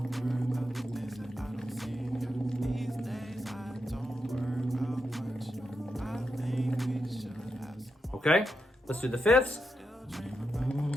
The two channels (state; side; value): normal; both; correlation 0.85